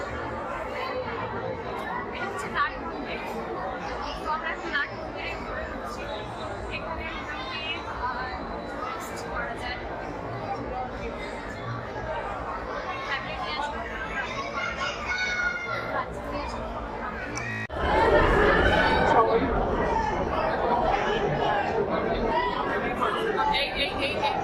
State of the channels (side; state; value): both; identical; correlation 1.00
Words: এটা হচ্ছে নাট মন্দির। তো আমরা এখন নাট মন্দিরে ঘুরে ঢুকছি। এখানে মোটামুটি rest করা যায়। Family নিয়ে আসলে বাচ্চা নিয়ে আসলে